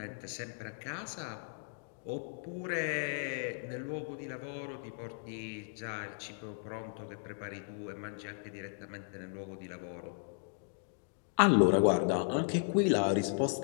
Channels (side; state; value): right; silent; digital silence